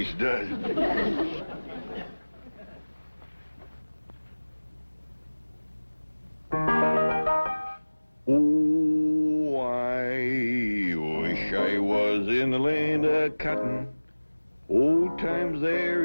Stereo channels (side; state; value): both; inverted; correlation -1.00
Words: it does. Oh, I wish I was in the land of cotton. Old times there